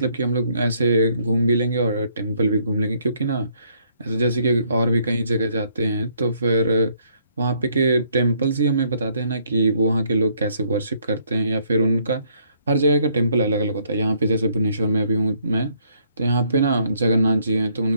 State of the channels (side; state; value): both; inverted; correlation -0.68